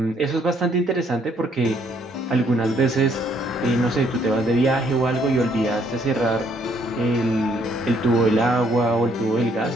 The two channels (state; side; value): normal; both; correlation 0.67